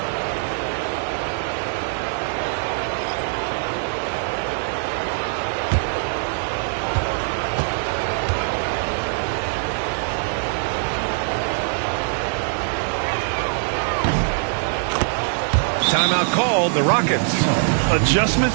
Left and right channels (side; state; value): left; silent; 64 dB below the other